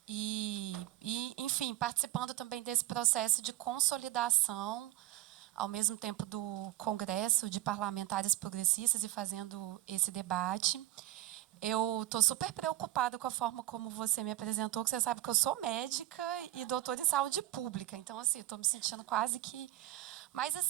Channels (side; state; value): left; quieter; 15.2 dB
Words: Enfim, participando também desse processo de consolidação, ao mesmo tempo do Congresso de Parlamentares Progressistas e fazendo esse debate. Eu estou super preocupada com a forma como você me apresentou, que você sabe que eu sou médica e doutora em saúde pública. Então, assim, estou me sentindo quase que... Mas,